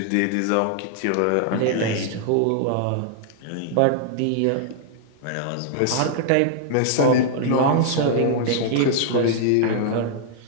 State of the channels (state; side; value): different; both; correlation -0.01